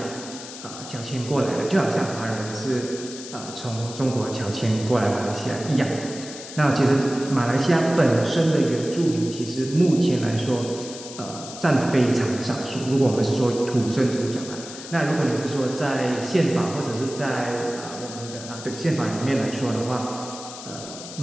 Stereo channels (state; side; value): noise; left; hiss, 12 dB below the sound